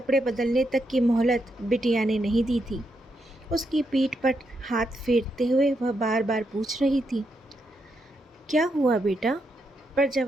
बदलने तक की मोहलत बिटिया ने नहीं दी थी। उसकी पीठ पर हाथ फेरते हुए वह बार बार पूछ रही थी, क्या हुआ बेटा? पर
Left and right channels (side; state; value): both; normal; correlation 0.81